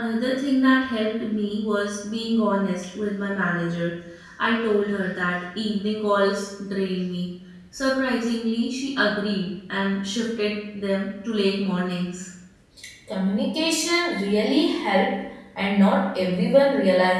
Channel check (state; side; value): identical; both; correlation 1.00